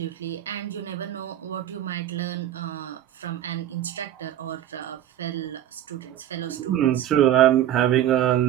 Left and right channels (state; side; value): quieter; left; 12.0 dB